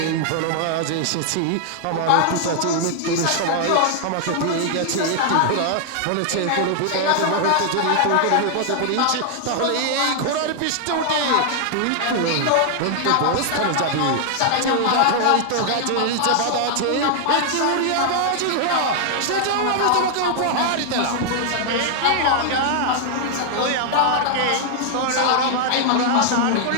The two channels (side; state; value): both; different; correlation 0.00